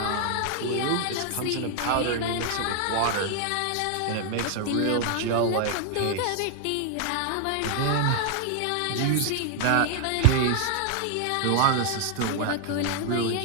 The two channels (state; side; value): different; both; correlation 0.00